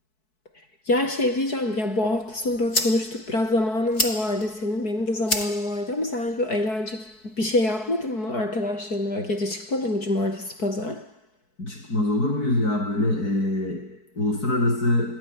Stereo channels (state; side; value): late; right; 4.6 ms